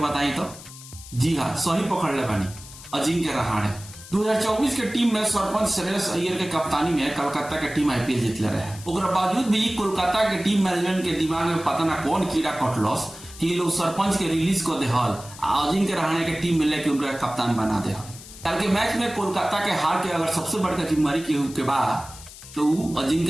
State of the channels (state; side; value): noise; left; hiss, 16 dB below the sound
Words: तो। जी हाँ, सही पकड़ ले बानी, अजिंक्य रहाणे। 2024 के टीम में सरपंच श्रेयस अय्यर के कप्तानी में कलकत्ता के टीम आईपीएल जीतले रहे। ओकरा बावजूद भी कोलकाता के टीम मैनेजमेंट के दिमाग में पता ना कौन कीड़ा कटलस कि लोग सरपंच के रिलीज को देहल, अजिंक्य रहाणे के टीम में लेके उनका कप्तान बना दे। कल के मैच में कोलकाता के हार के अगर सबसे बड़का जिम्मेवारी के बाद तो